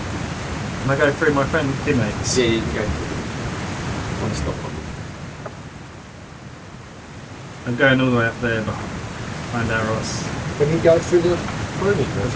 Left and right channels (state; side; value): identical; both; correlation 1.00